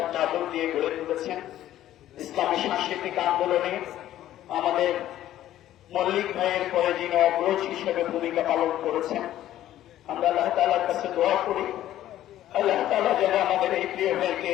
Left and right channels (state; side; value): quieter; right; 13.0 dB